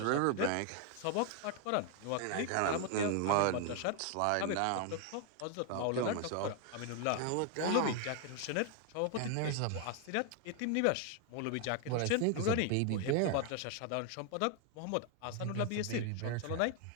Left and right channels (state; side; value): different; both; correlation 0.01